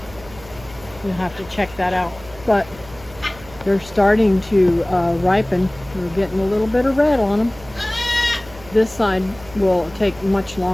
You'll have to check that out. But they're starting to ripen. We're getting a little bit of red on them. This side will take much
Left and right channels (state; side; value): noise; right; hum, 20 dB below the sound